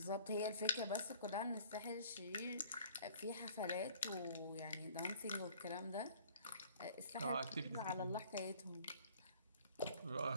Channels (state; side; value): inverted; both; correlation -0.53